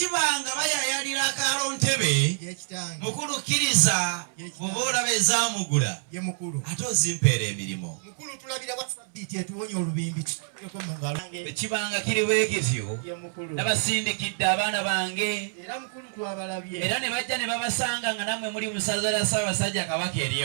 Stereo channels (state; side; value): silent; left; 60 dB below the other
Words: bayayalira akaalo ntebe mukulu kkiriza bw'oba olaba ezaamugula ate ozimpeera emirimu. Mukulu tulabira wasabbiiti etuwonya olubimbi tuteeko mu ngalo. Ekibanga kiri bwe kityo nabasindikidde abaana bange era mukulu twabalabye era ne bajja ne babasanga nga nammwe muli mu ssaza lya Ssaabasajja Kabaka